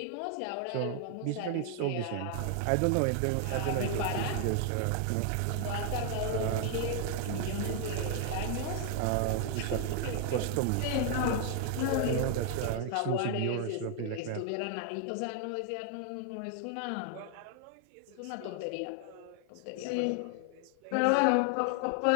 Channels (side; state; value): both; different; correlation 0.00